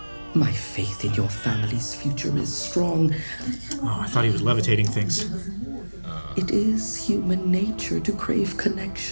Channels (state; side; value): inverted; both; correlation -1.00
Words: My faith in your family's future is strong. Oh, I thought he was levitating things. It is human nature to crave